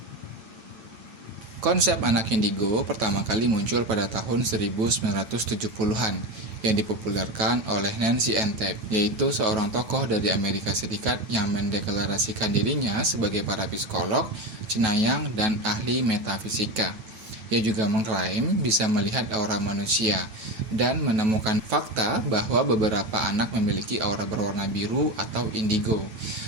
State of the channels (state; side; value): late; left; 8.8 ms